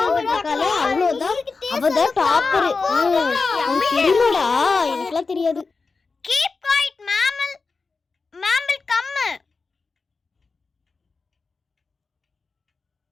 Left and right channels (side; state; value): right; quieter; 4.3 dB